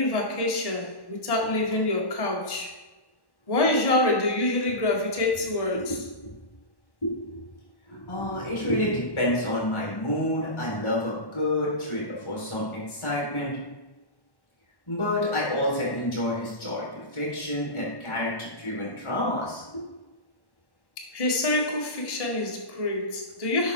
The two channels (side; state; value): right; late; 1.1 ms